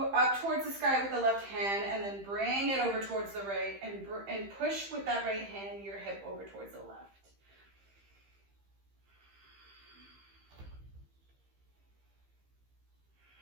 up towards the sky with the left hand, and then bring it over towards the right and push with that right hand your hip over towards the left.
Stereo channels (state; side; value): late; left; 15 ms